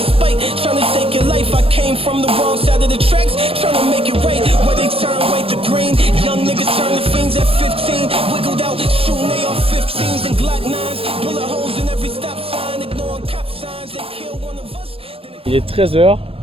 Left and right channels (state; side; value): late; left; 0.28 ms